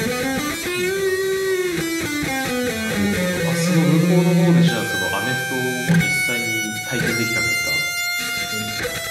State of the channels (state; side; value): identical; both; correlation 1.00